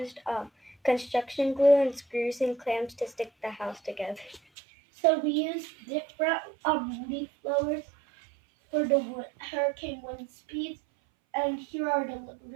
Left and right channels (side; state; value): left; drops out; at 4.4 s